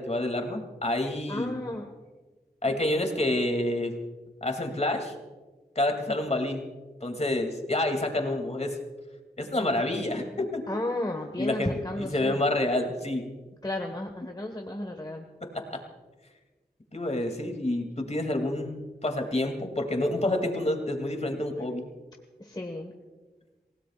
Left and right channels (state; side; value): normal; both; correlation 0.65